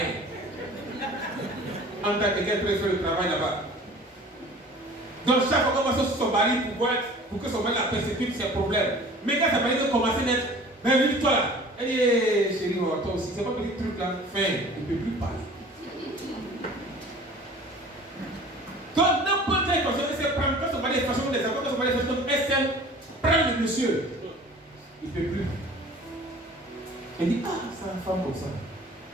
en tant que quelqu'un peut faire le travail là-bas. Donc, chaque fois qu'on va sur son mari pour que son mari la persécute, c'est un problème. Mais quand sa mari veut commencer à mettre, ben, toi là. Elle dit, hey, chérie, toi aussi, c'est pas petit truc là. Fin, il ne peut plus parler. Donc, n'importe quelle personne, elle sait prendre, quand son mari est fâché, quand son mari est fâché, elle sait prendre le monsieur. Il ne peut plus. Elle dit, ah, c'est une femme comme ça.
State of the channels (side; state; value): both; normal; correlation 0.46